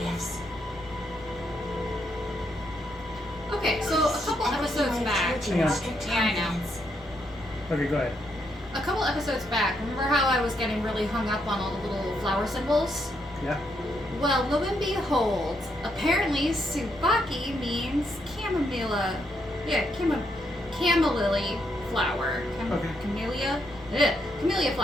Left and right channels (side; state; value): both; normal; correlation 0.77